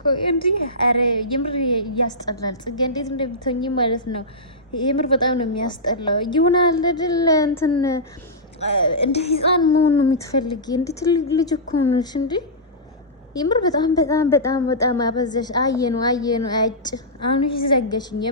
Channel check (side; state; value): both; normal; correlation -0.14